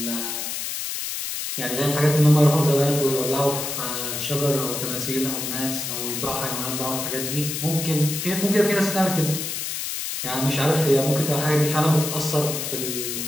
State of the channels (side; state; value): left; noise; hiss, 4 dB below the sound